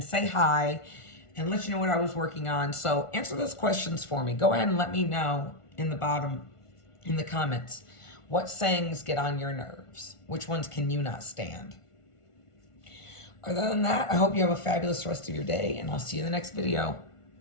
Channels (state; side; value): late; right; 1.4 ms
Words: say hi and let you know what I was working on. So answer those questions for me. Go ahead and let me know in the comments. What sayings get on your nerves? Which ones can you not stand? Other than that, I hope you have a fabulous rest of your day, and I'll see you in the next video.